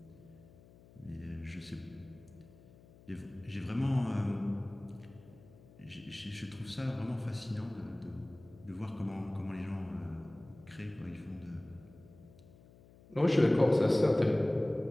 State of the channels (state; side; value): noise; left; hum, 23 dB below the sound